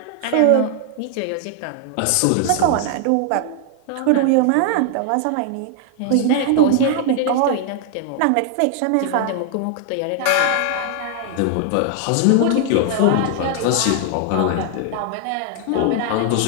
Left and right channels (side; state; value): both; different; correlation 0.00